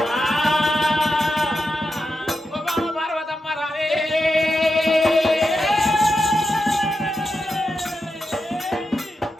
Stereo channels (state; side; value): normal; both; correlation 0.87